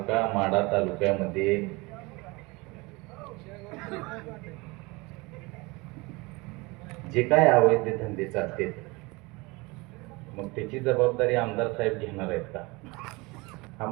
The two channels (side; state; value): left; quieter; 24.8 dB